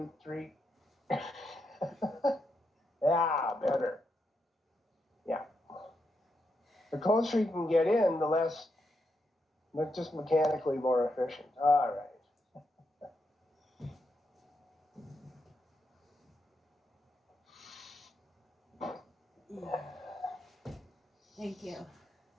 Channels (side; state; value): both; normal; correlation 0.82